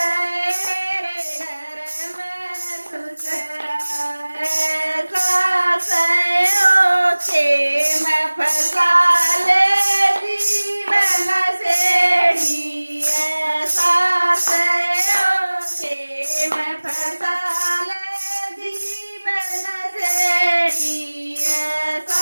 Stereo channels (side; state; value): both; inverted; correlation -1.00